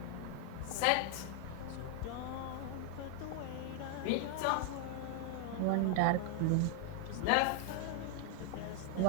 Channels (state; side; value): different; both; correlation 0.00